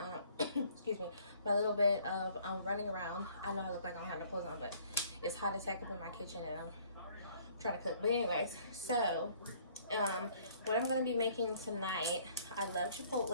excuse me, my little bit of running around. I know I look like I don't have no clothes on, but it's hot as heck up in my kitchen and I'm trying to cook. But anyways, so what I'm gonna be making tonight, I love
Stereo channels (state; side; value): inverted; both; correlation -0.58